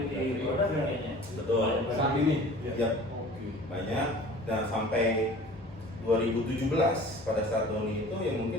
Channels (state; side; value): normal; both; correlation 0.44